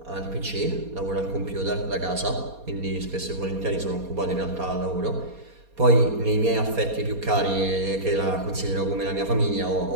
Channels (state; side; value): late; left; 4.2 ms